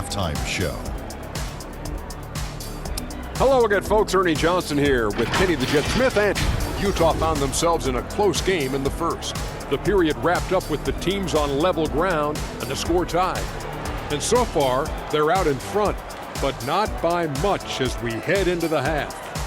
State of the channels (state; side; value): identical; both; correlation 1.00